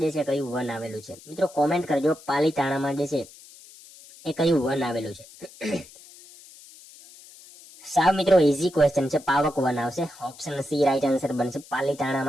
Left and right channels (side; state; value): left; noise; hiss, 21 dB below the sound